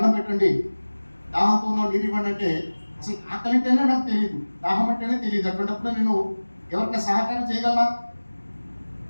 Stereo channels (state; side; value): inverted; both; correlation -1.00